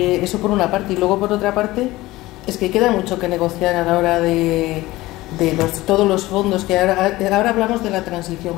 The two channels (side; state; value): right; quieter; 18.4 dB